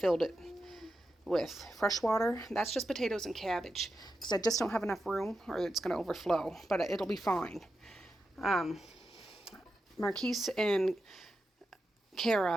it with fresh water. That's just potatoes and cabbage, because I just don't have enough room, or it's going to overflow, but it'll be fine. Marquise and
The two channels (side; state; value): both; normal; correlation 0.89